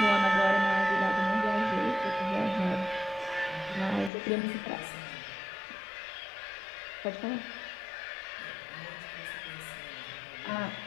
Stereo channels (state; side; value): drops out; right; at 4.1 s